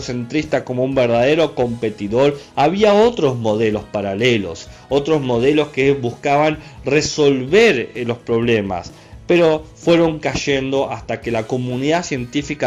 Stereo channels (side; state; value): both; identical; correlation 1.00